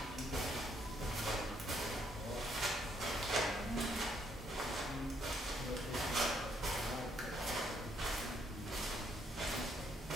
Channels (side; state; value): both; normal; correlation 0.71